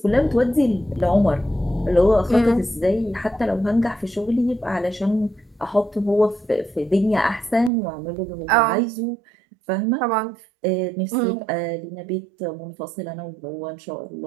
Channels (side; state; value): left; drops out; at 7.7 s